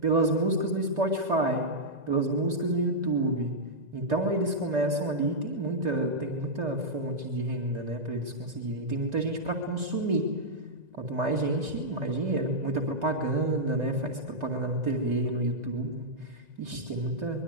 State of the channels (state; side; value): late; left; 1.9 ms